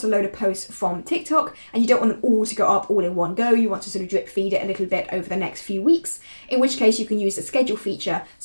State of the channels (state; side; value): inverted; both; correlation -1.00